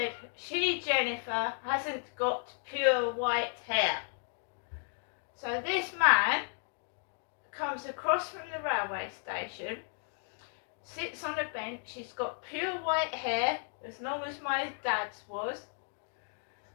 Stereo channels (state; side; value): silent; right; 55 dB below the other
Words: she, Jennifer, hasn't got pure white hair. So this man comes across from the railway station, sits on a bench, he's got pure white hair, as long as my dad's was.